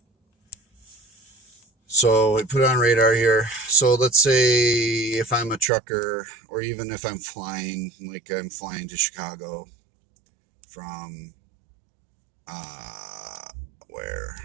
So I put it on radar here. So let's say if I'm a trucker, or even if I'm flying, like I'm flying to Chicago from where?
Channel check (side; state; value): left; drops out; at 5.7 s